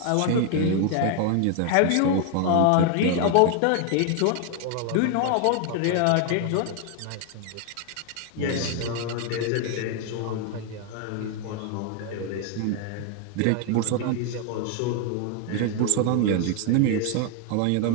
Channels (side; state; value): both; different; correlation 0.00